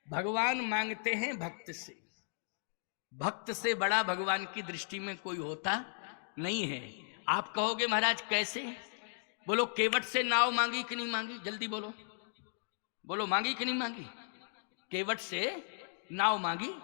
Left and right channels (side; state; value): right; silent; digital silence